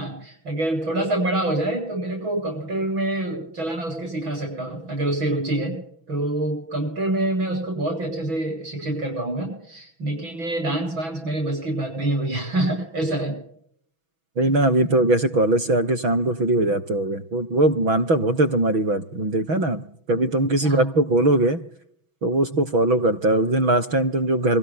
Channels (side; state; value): left; late; 6.1 ms